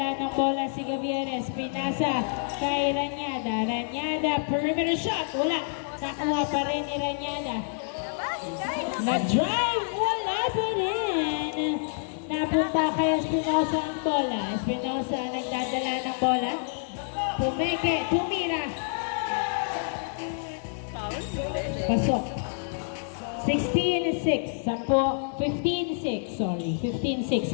ng bola si Gavieres. Pinasa kay Ranyada. Ranyada, perimeter shot. Wala. Nakuha pa rin ni Ranyada. Nag-drive. Wala pa rin. Napunta kay Espinosa ang bola. Espinosa nagdadala ng bola. Pumeke. Tumira. Pasok. 16-6. 15-6. Sorry. 15-6.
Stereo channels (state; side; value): silent; right; digital silence